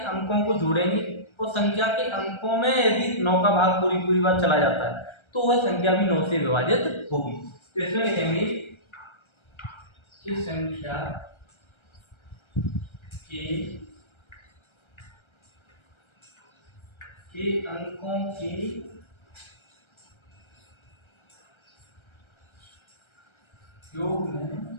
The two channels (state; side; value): late; right; 1.3 ms